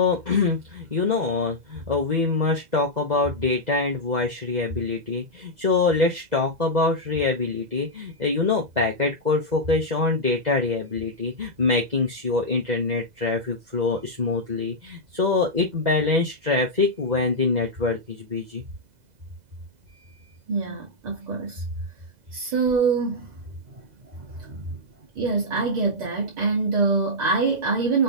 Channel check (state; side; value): late; left; 2.0 ms